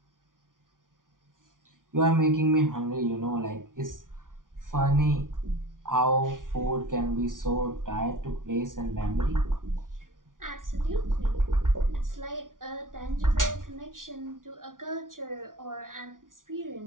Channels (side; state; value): left; late; 0.89 ms